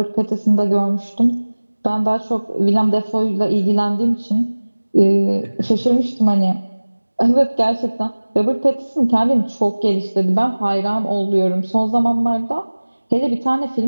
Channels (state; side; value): inverted; both; correlation -1.00